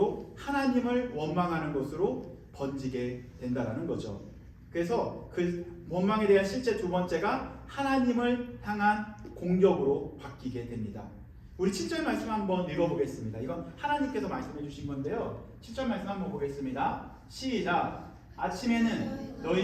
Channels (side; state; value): both; identical; correlation 1.00